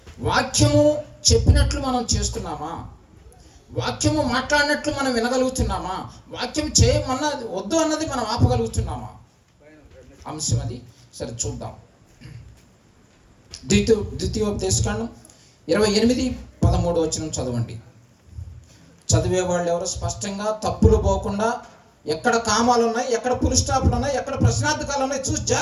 వాక్యము చెప్పినట్లు మనం చేస్తున్నామా? వాక్యము మాట్లాడినట్లు మనం వినగలుగుతున్నామా? వాక్యం చేయమన్నది వద్దు అన్నది మనం ఆపగలుగుతున్నామా? అంశం అది. సరే చూద్దాం. ద్వితీయోపదేశకాండం 28:13 వచనం చదవండి. చదివే వాళ్ళు ఎవరు స్పష్టంగా తప్పులు పోకుండా, ఎక్కడ కామాలు ఉన్నాయి, ఎక్కడ పుల్ స్టాప్లు ఉన్నాయి, ఎక్కడ ప్రశ్నార్థకాలు ఉన్నాయి చూసి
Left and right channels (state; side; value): identical; both; correlation 1.00